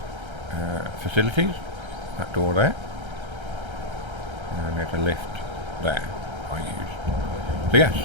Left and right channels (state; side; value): late; left; 1.3 ms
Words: facilities. That door there. And there's a lift there I used. So yes,